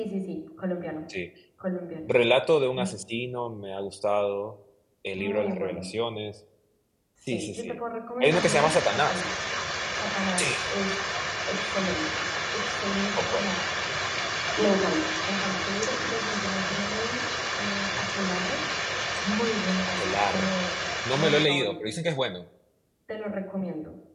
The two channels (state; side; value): identical; both; correlation 1.00